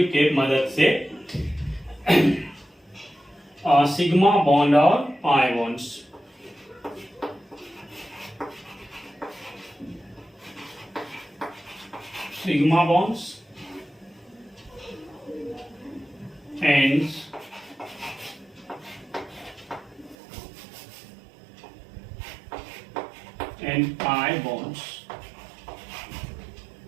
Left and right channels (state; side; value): drops out; left; at 20.2 s